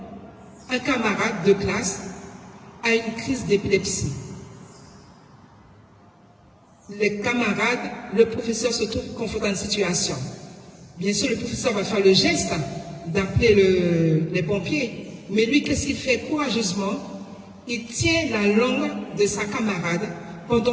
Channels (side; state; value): both; identical; correlation 1.00